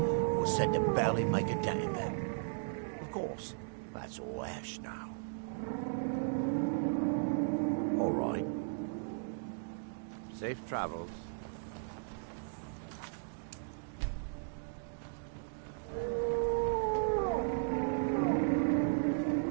were said to barely make a dent in them. Of course, that's all ash now. All right. Safe travels.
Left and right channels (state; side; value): silent; left; digital silence